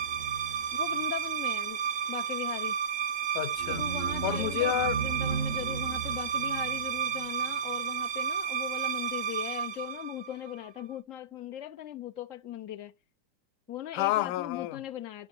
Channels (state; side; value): late; left; 3.8 ms